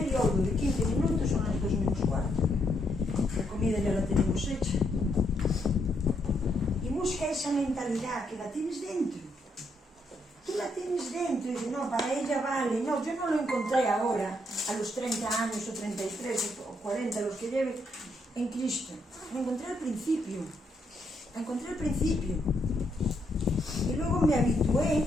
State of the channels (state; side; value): normal; both; correlation 0.76